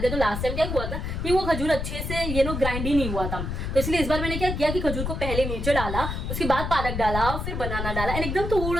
है, तो लास्ट टाइम क्या हुआ था कि वो खजूर अच्छे से ग्राइंड ही नहीं हुआ था, तो इसलिए इस बार मैंने क्या किया कि खजूर को पहले नीचे डाला, उसके बाद पालक डाला, फिर बनाना डाला, एंड एकदम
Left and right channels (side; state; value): left; noise; rumble, 3 dB below the sound